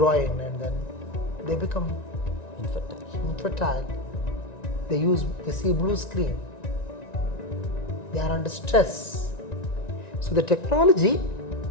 and then they become infertile. They see blue screen. They are under stress. So the technology,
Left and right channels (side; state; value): right; late; 1.9 ms